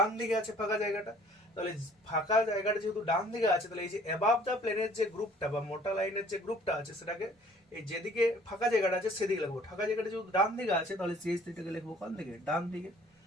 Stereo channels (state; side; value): normal; both; correlation 0.55